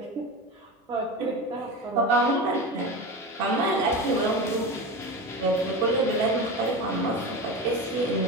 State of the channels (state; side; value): normal; both; correlation 0.25